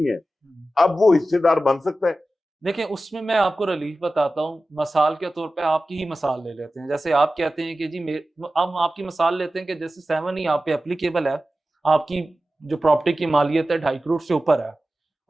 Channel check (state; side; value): normal; both; correlation 0.94